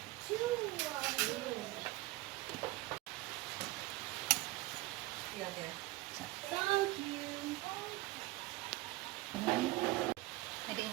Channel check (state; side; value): quieter; left; 18.9 dB